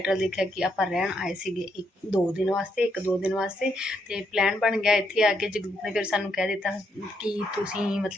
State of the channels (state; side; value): normal; both; correlation 0.77